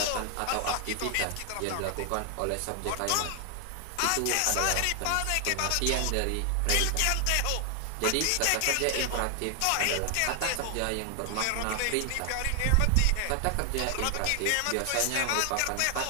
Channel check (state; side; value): different; both; correlation 0.00